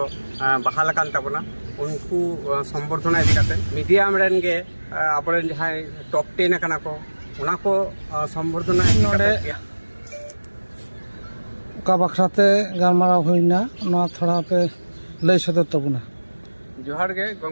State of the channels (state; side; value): inverted; both; correlation -1.00